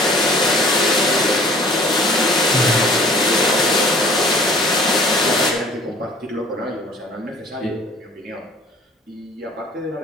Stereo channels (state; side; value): normal; both; correlation 0.50